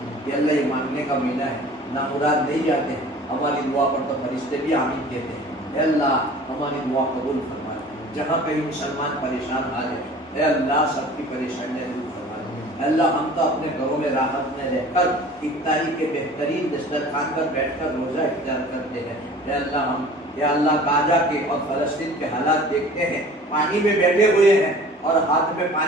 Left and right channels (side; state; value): both; normal; correlation 0.45